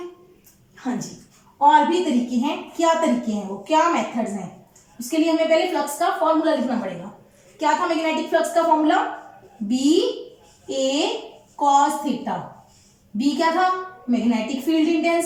हाँ जी, और भी तरीके हैं। क्या तरीके हैं वो, क्या मेथड्स हैं? उसके लिए हमें पहले फ्लक्स का फॉर्मूला लिखना पड़ेगा। क्या था मैग्नेटिक फ्लक्स का formula? BA cos theta. B क्या था? Magnetic field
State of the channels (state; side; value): identical; both; correlation 1.00